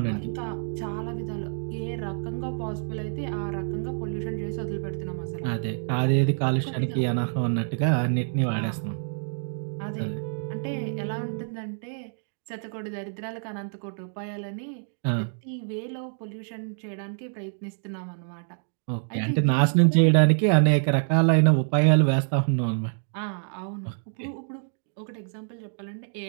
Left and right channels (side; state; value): left; silent; digital silence